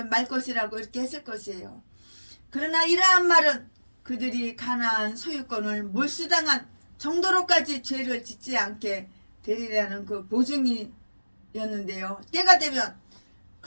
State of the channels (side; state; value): both; inverted; correlation -1.00